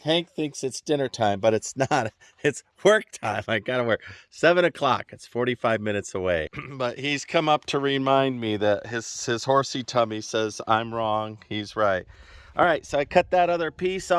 Hank thinks it's dinner time, but it's not. It's work time. I gotta work. 7 o'clock. It's 45 minutes away. But he's come up to remind me that his horsey tummy says I'm wrong. He's right. All right, so I cut that other piece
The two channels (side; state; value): both; identical; correlation 1.00